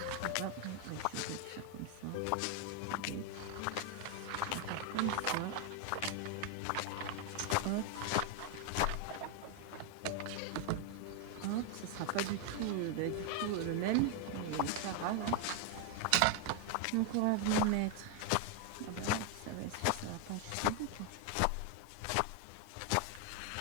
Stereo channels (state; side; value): different; both; correlation 0.00